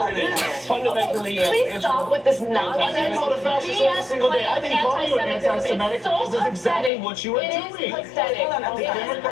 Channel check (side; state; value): right; drops out; at 6.9 s